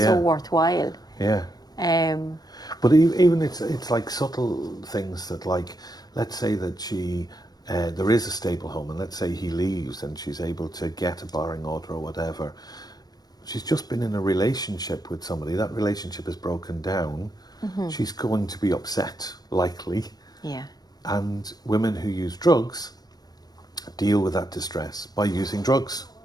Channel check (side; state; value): right; late; 0.19 ms